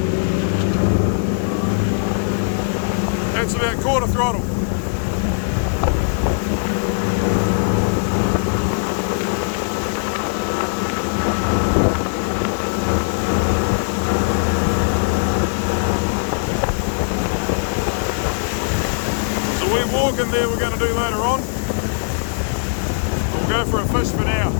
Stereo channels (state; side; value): silent; right; 63 dB below the other